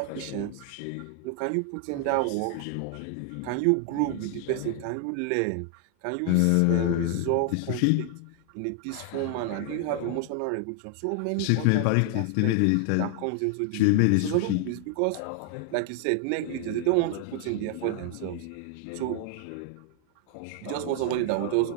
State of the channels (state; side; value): different; both; correlation 0.00